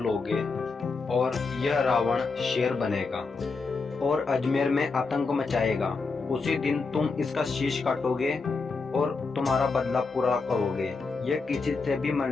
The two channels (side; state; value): right; quieter; 4.3 dB